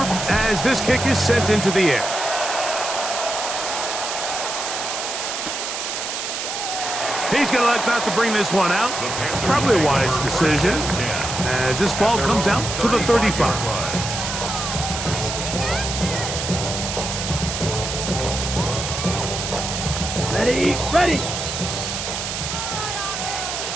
as this kick is sent into the air. He's going to elect not to bring this one out. Probably a wise decision as this ball comes out to the 35. Ready, ready.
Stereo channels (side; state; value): right; noise; hiss, 4 dB below the sound